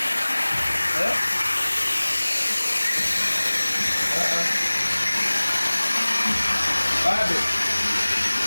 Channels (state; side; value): inverted; both; correlation -1.00